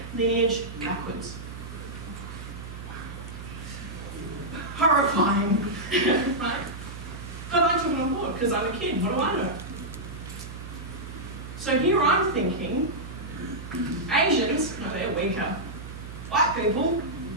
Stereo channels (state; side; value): noise; right; hum, 11 dB below the sound